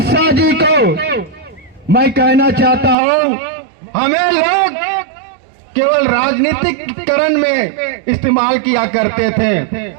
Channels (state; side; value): drops out; left; at 3.0 s